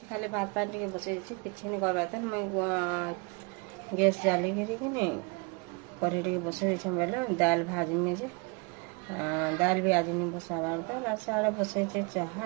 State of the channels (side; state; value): left; quieter; 31.2 dB